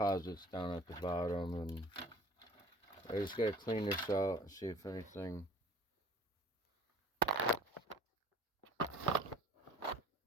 down at the bottom, and I just gotta clean this out and see if anything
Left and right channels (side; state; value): both; normal; correlation 0.50